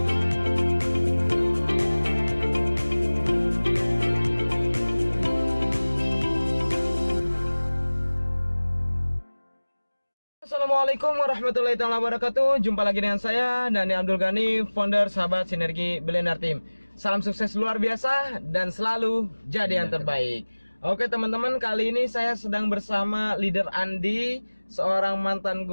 Assalamualaikum warahmatullahi wabarakatuh. Jumpa lagi dengan saya, Dani Abdul Ghani, founder Sahabat Sinergi Billionaire Team. Salam sukses luar biasa dan selalu jadi yang terbaik. Oke teman-teman, kali ini saya sedang bersama leader Andi, seorang mantan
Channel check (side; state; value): both; inverted; correlation -1.00